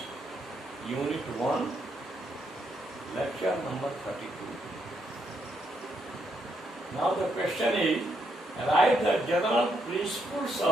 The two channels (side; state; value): both; normal; correlation 0.77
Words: Unit 1, lecture number 32. Now the question is, write the general principles